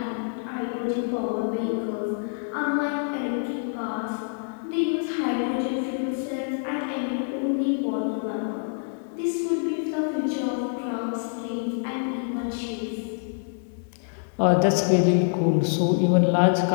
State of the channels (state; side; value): silent; right; digital silence